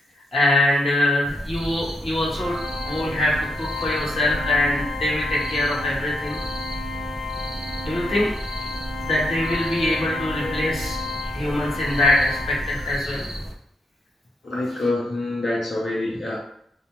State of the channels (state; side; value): normal; both; correlation 0.79